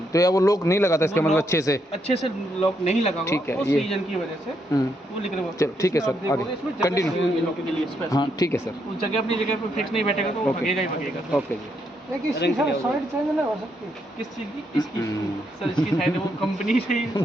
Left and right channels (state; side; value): normal; both; correlation 0.77